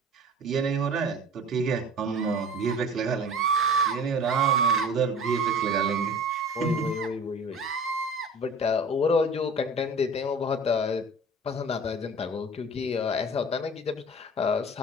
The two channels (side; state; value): both; normal; correlation 0.42